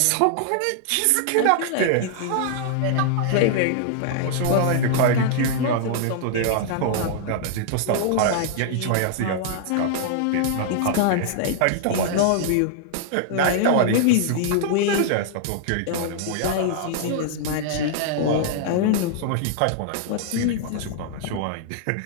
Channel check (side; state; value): both; different; correlation -0.01